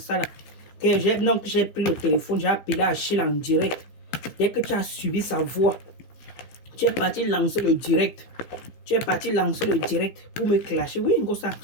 là, que j'ai pris le téléphone, j'ai appelé Achille en direct. Dès que tu as suivi sa voix, tu es parti lancer le direct. Tu es parti lancer le direct pour me clasher. Oui,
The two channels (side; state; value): right; late; 15 ms